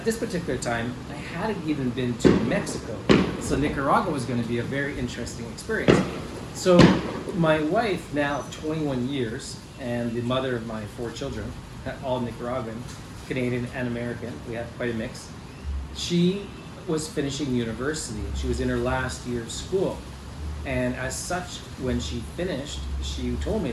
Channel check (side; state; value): both; identical; correlation 1.00